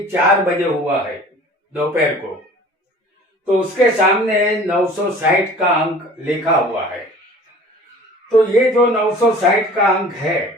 4 बजे हुआ है दोपहर को। तो उसके सामने 960 का अंक लिखा हुआ है। तो ये जो 960 का अंक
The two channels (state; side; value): normal; both; correlation 0.46